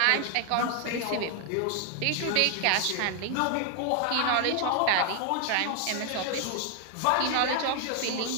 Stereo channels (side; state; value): both; different; correlation 0.00